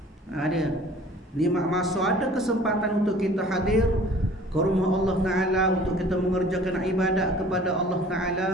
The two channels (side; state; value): both; normal; correlation 0.49